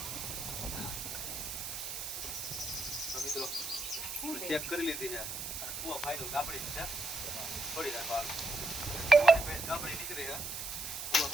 મિત્રો ચેક કરી લીધી છે. કુવા ફાઇનલ ગાબડી છે, છોડી રાખવા ગાબડી નીકળી છે. કુવા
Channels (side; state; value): right; noise; hiss, 5 dB below the sound